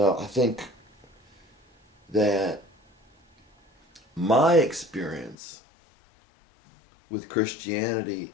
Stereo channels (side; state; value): right; drops out; at 5.4 s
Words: I think that my experience with Christianity